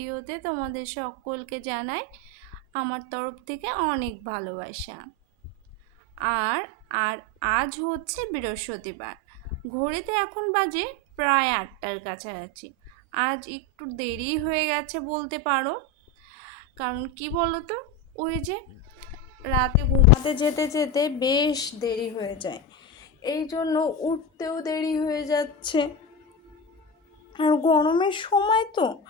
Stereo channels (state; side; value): normal; both; correlation 0.18